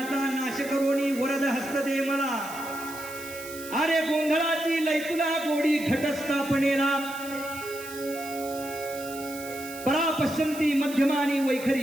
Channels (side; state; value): right; noise; hiss, 14 dB below the sound